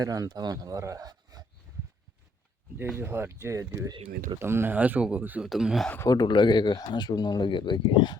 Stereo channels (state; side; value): normal; both; correlation 0.68